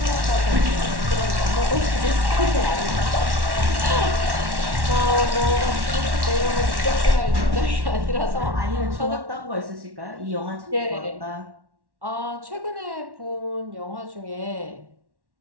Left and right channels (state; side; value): late; left; 1.1 ms